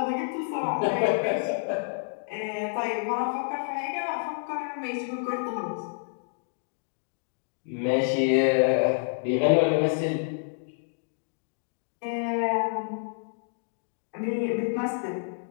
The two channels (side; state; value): right; silent; digital silence